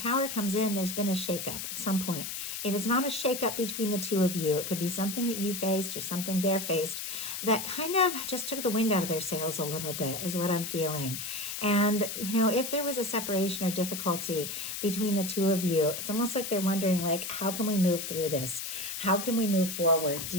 comes in, there's been a shakeup at some point. If it's not a shakeup between the two of you, it could be something that you faced or something they're faced that kind of just took the wind out of their sails a little bit is what I'm feeling. And, if there was a separation or difficulty between the two of you, it's almost like they're wondering, like, how can we move through this? How can we move forward?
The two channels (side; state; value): left; noise; hiss, 5 dB below the sound